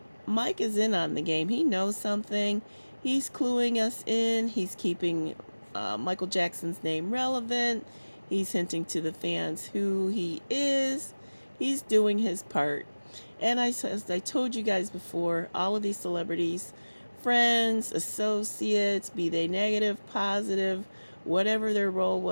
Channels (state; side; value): inverted; both; correlation -1.00